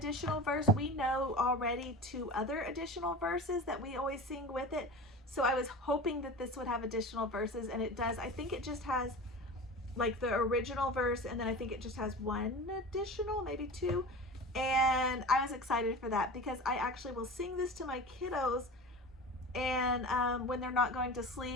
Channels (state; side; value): normal; both; correlation 0.32